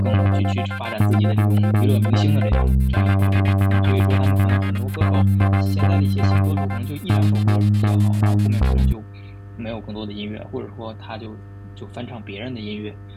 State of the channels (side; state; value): both; identical; correlation 1.00